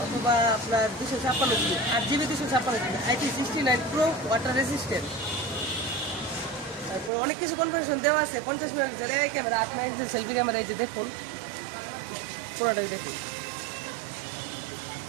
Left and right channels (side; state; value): left; drops out; at 7.1 s